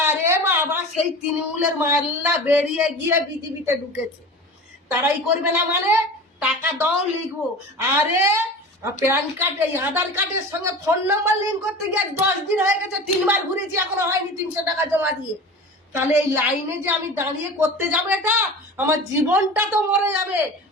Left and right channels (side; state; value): both; normal; correlation 0.34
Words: বাবা সেই তৃণমূলের মাল্লা বেরিয়ে গিয়ে বিজেপিতে ঢুকেছে, তারাই করবে না মানে? টাকা দাও লিখবো। আরে প্যান কার্ড এই আধার কার্ডের সঙ্গে ফোন নাম্বার লিঙ্ক করতে গিয়ে 10 দিন হয়ে গেছে, 3বার ঘুরেছি এখনো হয়নি 300 টাকা জমা দিয়ে। তাহলে এই লাইনে যে আমি দাঁড়িয়ে করতে যাবো, এটা আমার জীবনটা তো মরে যাবে।